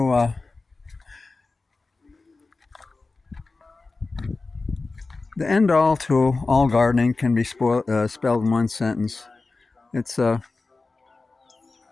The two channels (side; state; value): right; quieter; 3.7 dB